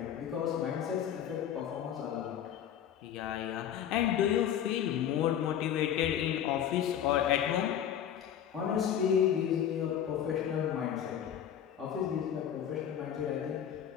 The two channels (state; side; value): quieter; right; 9.7 dB